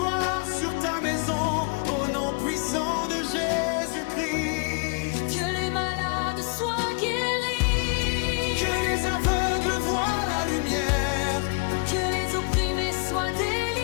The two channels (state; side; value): quieter; right; 33.8 dB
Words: sur ta maison, au nom puissant de Jésus-Christ. Que les malades soient guéris, Que les aveugles voient la lumière, que les opprimés soient